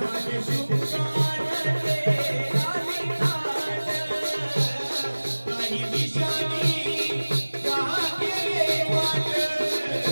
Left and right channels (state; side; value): inverted; both; correlation -1.00